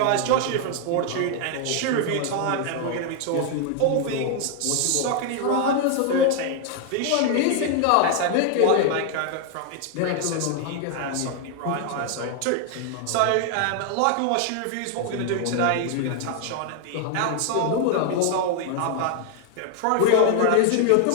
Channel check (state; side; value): different; both; correlation 0.00